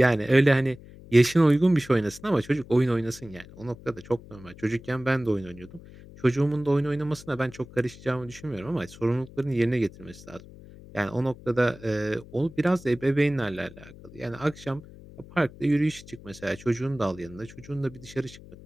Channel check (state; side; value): noise; left; hum, 19 dB below the sound